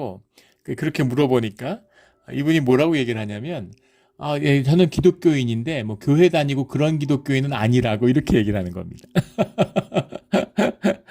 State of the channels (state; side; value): identical; both; correlation 1.00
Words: 그렇게 물어보니까 이분이 뭐라고 얘기를 하냐면, 저는 기독교인인데 뭐 교회 다니고 그런 기독교인은 아니라고 이렇게 얘기를 하는 겁니다.